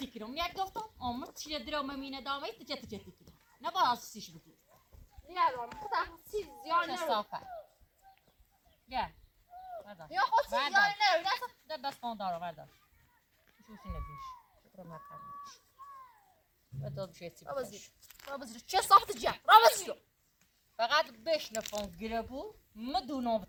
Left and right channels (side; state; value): both; identical; correlation 1.00